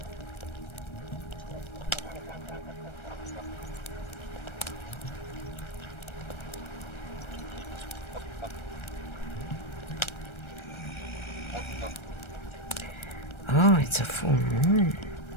Oh, it's a full moon.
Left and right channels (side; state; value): right; late; 1.3 ms